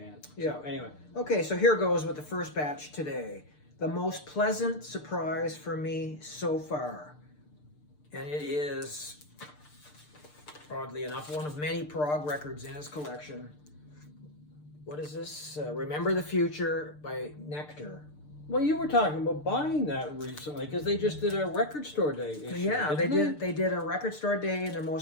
Yeah. So, anyway. Okay, so here goes with the first batch today. The most pleasant surprise for me so far. And it is, oddly enough, one of many prog records in his collection. What is this? Remember the Future by Nectar. Well, you were talking about buying that recently, because they just did a record store day issue. Yeah, they did. They did a record store day in their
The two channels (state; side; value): late; right; 6.7 ms